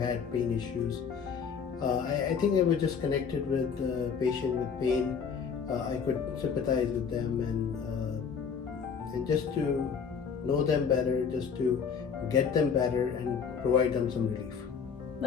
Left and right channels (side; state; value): right; quieter; 6.4 dB